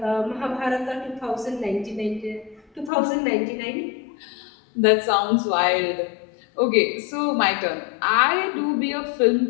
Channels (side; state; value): right; drops out; at 2.9 s